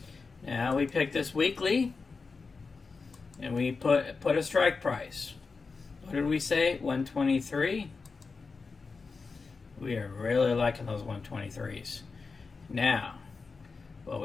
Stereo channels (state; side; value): quieter; right; 4.5 dB